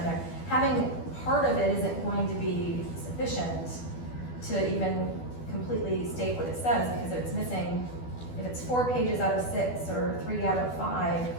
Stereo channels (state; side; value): late; right; 12 ms